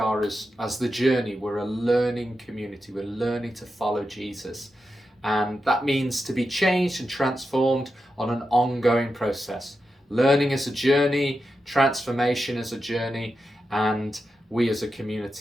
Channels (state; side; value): normal; both; correlation 0.89